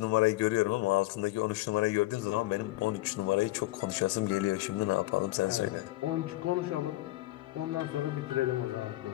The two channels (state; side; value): quieter; right; 17.9 dB